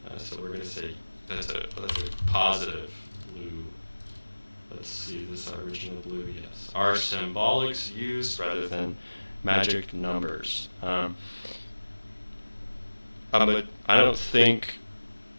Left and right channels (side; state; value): both; inverted; correlation -1.00